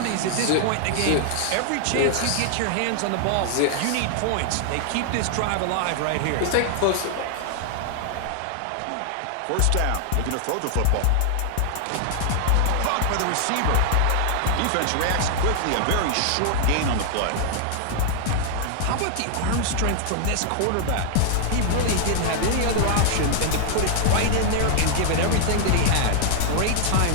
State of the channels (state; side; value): different; both; correlation 0.00